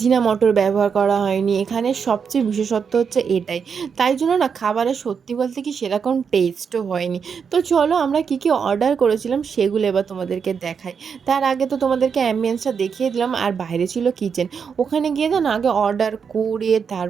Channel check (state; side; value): quieter; left; 6.4 dB